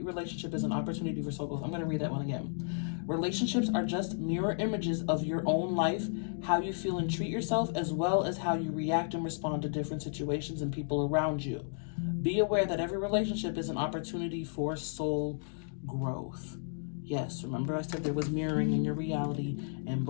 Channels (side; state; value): right; silent; digital silence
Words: relationship is an opportunity for soul growth. I'm going to read that one again. Relationships are just mirror images of your own life, how you feel and treat yourself, as well as how you react and respond to different situations and people around you. Be aware that every relationship is an opportunity for soul growth. Yes, remember I said there was mirroring in your reality, and